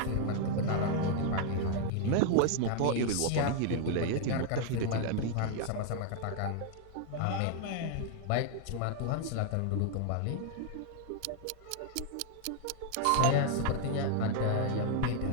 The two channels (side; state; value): both; different; correlation 0.00